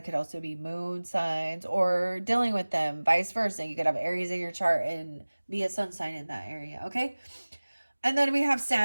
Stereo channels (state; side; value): inverted; both; correlation -1.00